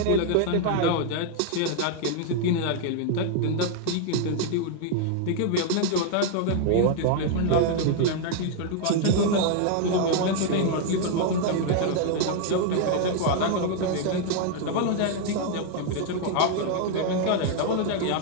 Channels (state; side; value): different; both; correlation 0.00